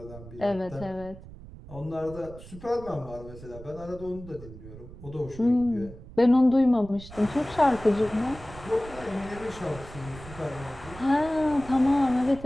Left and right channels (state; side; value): noise; right; rumble, 16 dB below the sound